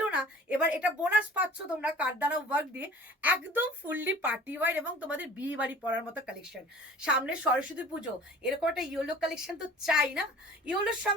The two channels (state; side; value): normal; both; correlation 0.45